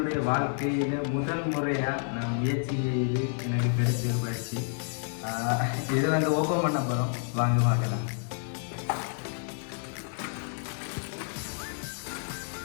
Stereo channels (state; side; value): silent; right; 58 dB below the other